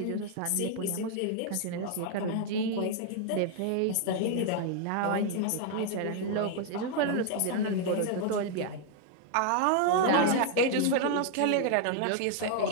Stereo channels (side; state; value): both; different; correlation 0.00